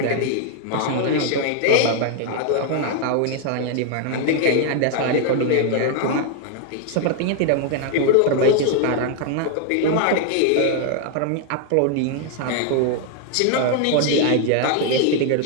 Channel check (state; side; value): different; both; correlation 0.00